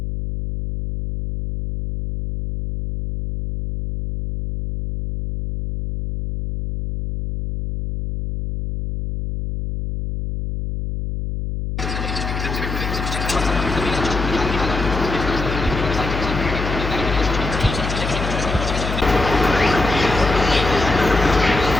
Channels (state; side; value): noise; left; hum, 4 dB below the sound